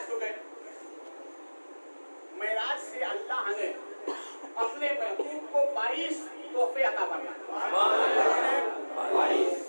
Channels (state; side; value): inverted; both; correlation -1.00